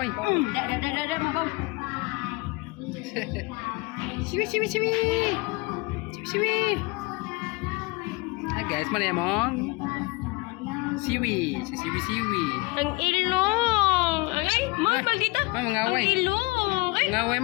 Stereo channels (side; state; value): right; quieter; 26.2 dB